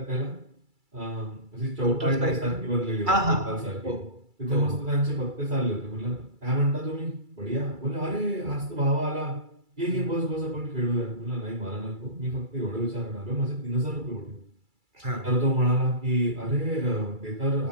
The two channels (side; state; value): left; late; 2.3 ms